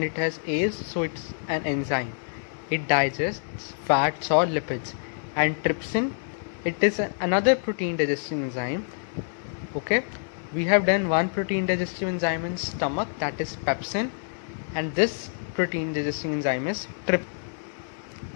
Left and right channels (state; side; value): silent; right; 58 dB below the other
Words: it has A's, so it's an enzyme. It digests fats or lipids. And trypsin, it is another protein digesting enzyme. Okay, we have done one protein digestive enzyme in stomach, that is pepsin, and this protein digesting enzyme is trypsin.